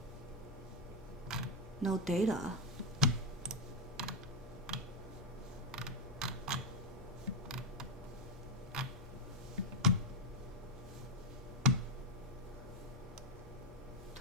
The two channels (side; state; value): both; normal; correlation 0.05